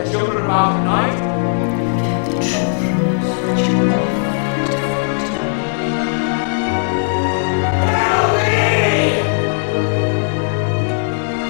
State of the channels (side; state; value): right; silent; 65 dB below the other